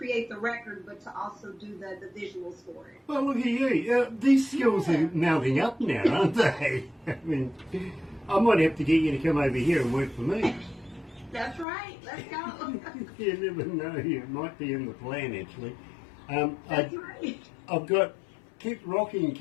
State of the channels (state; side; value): drops out; right; at 11.7 s